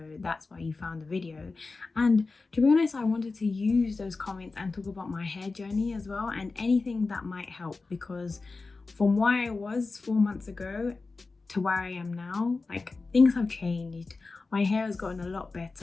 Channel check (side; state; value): right; quieter; 3.8 dB